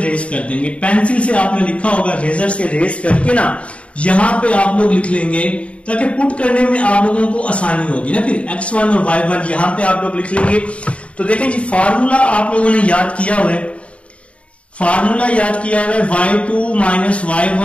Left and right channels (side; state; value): right; late; 0.063 ms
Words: कर देंगे, पेंसिल से आपने लिखा होगा, रेजर से रेस करके ना यहां पे आप लोग लिख लेंगे, ताकि पुट करने में आप लोगों को आसानी होगी ना। फिर x1 और y1 यहां पे आप लोग लिख लेंगे। तो देखें जी फार्मूला आप लोगों ने याद किया हुआ है, फार्मूला याद किया हुआ है y2 minus